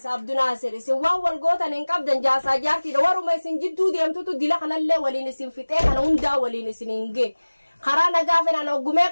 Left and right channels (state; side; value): inverted; both; correlation -1.00